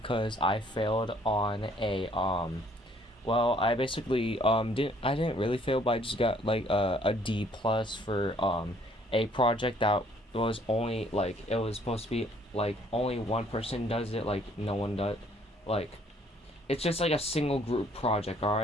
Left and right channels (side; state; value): both; normal; correlation 0.61